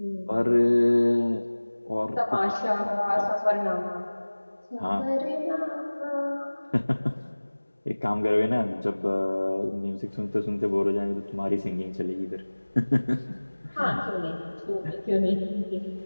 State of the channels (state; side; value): inverted; both; correlation -1.00